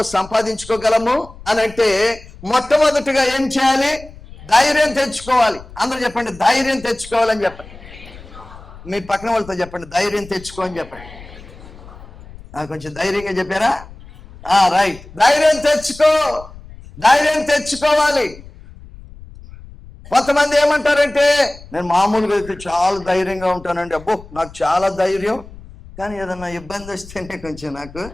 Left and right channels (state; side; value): noise; left; rumble, 18 dB below the sound